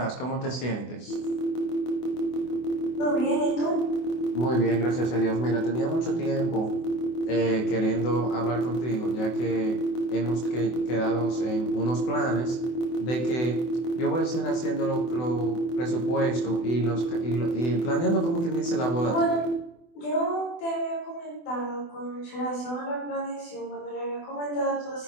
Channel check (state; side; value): late; right; 24 ms